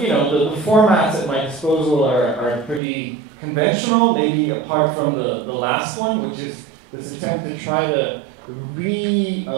formats at my disposal are pretty conventional, maybe apart from the last one, which is this attempt to try to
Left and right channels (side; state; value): left; drops out; at 2.8 s